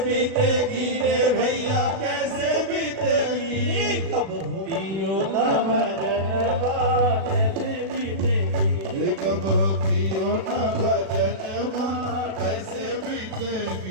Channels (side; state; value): left; late; 36 ms